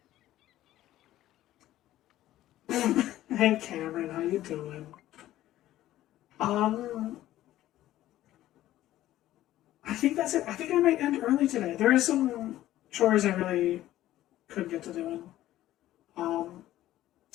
Hey Cameron, how you doing? I think that's it. I think I might end early today. There are some chores I really couldn't get to doing. I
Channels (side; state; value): right; quieter; 14.2 dB